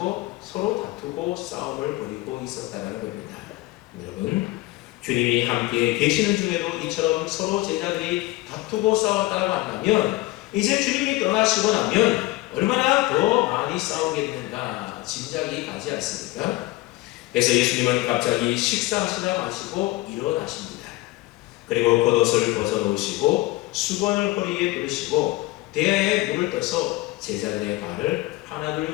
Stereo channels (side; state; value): right; quieter; 19.4 dB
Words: 서로 다투고 싸움을 벌이고 있었다는 겁니다. 여러분, 주님이 함께 계시는 중에도 이처럼 서로 제자들이 다투고 싸웠다고 한다면 이제 주님이 떠나시고 나면 얼마나 더 많이 싸우겠는가 짐작이 가지 않습니까? 그래서 예수님은 갑자기 식사하시다 마시고 일어나십니다. 그리고 겉옷을 벗어놓으시고 수건을 허리에 두르시고 대야에 물을 떠서 제자들의 발을 하나둘